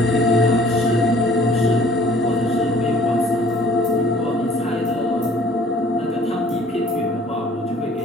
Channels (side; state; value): both; normal; correlation 0.54